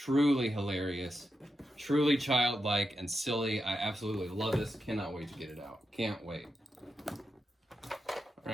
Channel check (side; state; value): both; normal; correlation 0.87